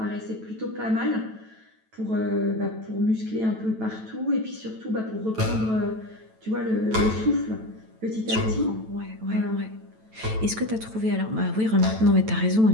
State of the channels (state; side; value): late; left; 9.1 ms